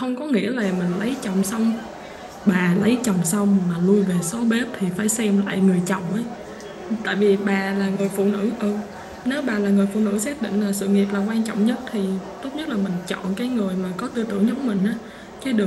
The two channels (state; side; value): identical; both; correlation 1.00